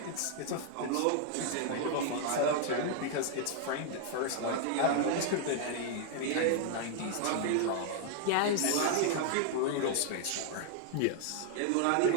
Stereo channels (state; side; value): different; both; correlation 0.00